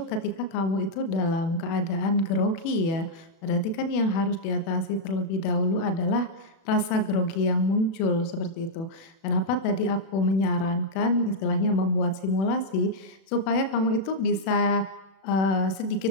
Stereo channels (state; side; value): late; right; 36 ms